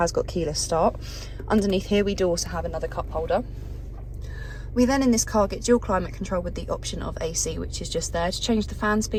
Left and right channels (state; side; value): identical; both; correlation 1.00